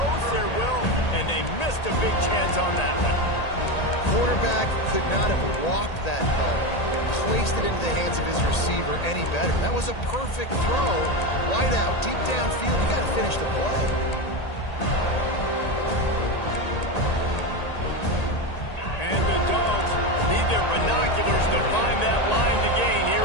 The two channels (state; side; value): late; right; 1.8 ms